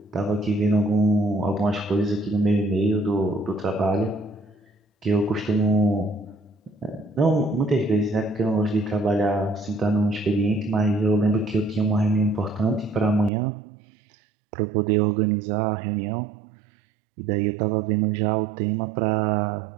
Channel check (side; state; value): left; drops out; at 13.3 s